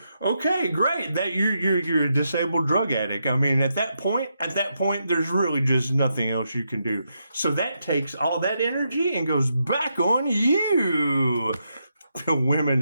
okay, great. That you're a disabled drug addict. I mean, at that point, there's really just nothing else you can do. So that takes all that energy and goes back on you. The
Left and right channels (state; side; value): inverted; both; correlation -0.82